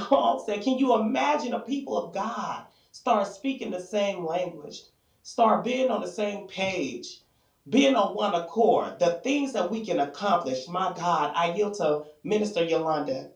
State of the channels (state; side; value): identical; both; correlation 1.00